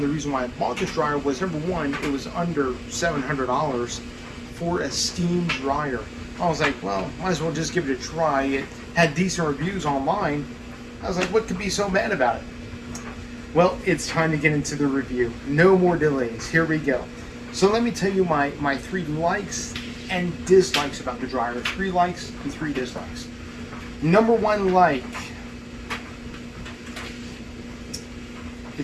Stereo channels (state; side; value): identical; both; correlation 1.00